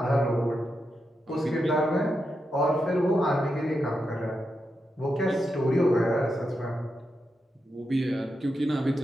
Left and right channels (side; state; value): both; normal; correlation 0.86